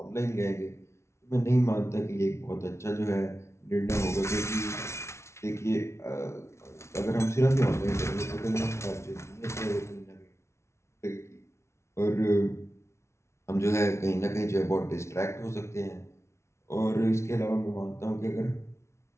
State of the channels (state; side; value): late; right; 0.13 ms